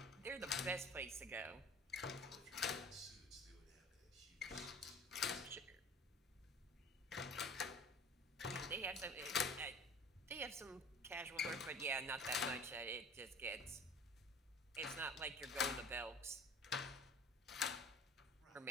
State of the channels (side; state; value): both; normal; correlation 0.44